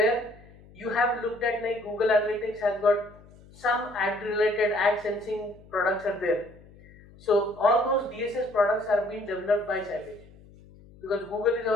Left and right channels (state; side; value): noise; left; hum, 23 dB below the sound